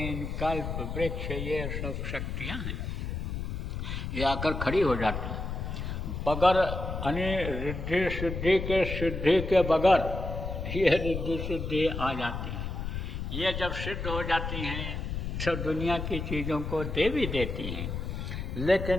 कल्प वृक्ष ये सब शक्तियाँ हैं, ये आकर खड़ी हो जाती हैं। बगैर यानी रिद्धि सिद्धि के बगैर ये रिद्धि सिद्धि आ जाती हैं। ये जब सिद्ध हो जाती हैं तो दुनिया की चीज़ों को दे भी देती हैं।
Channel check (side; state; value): left; noise; rumble, 4 dB below the sound